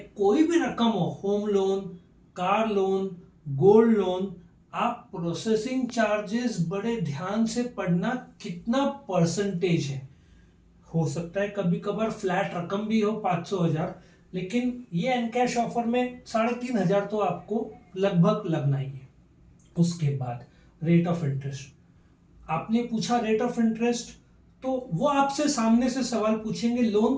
भी रकम हो, home loan, car loan, gold loan, आप प्रोसेसिंग चार्जेस बड़े ध्यान से पढ़ना, कितना परसेंटेज है। हो सकता है कभी कभार फ्लैट रकम भी हो 500,000, लेकिन ये एनकैश ऑफर में 3,500 तो आपको लगभग लगना ही है। उसके बाद रेट ऑफ इंटरेस्ट, आपने पूछा रेट ऑफ इंटरेस्ट, तो वो आपसे सामने से सवाल पूछेंगे लोन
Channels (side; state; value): both; identical; correlation 1.00